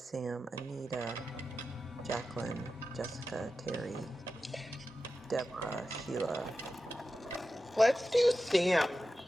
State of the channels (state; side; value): normal; both; correlation 0.92